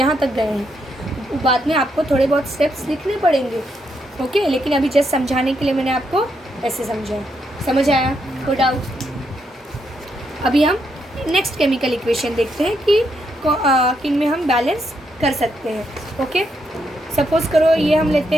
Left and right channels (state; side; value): normal; both; correlation 0.79